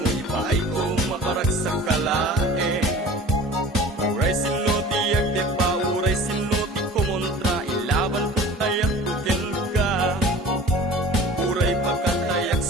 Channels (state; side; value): normal; both; correlation 0.42